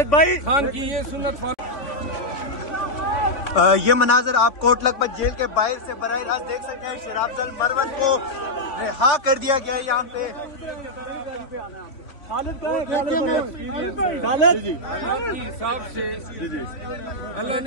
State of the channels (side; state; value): right; late; 3.5 ms